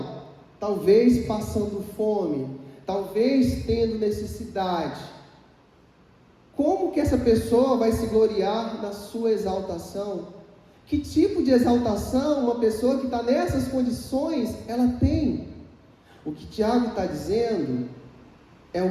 talvez passando fome, talvez tendo necessidade, como que essa pessoa vai se gloriar na sua exaltação? Que tipo de exaltação uma pessoa que está nessas condições, ela tem? O que Tiago está dizendo é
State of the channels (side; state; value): both; identical; correlation 1.00